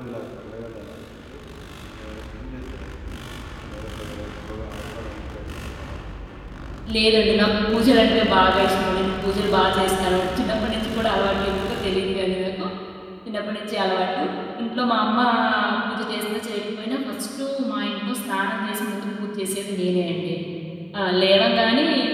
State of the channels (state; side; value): identical; both; correlation 1.00